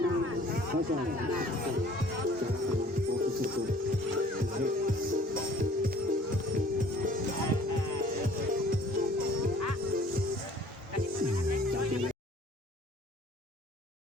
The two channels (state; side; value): normal; both; correlation 0.53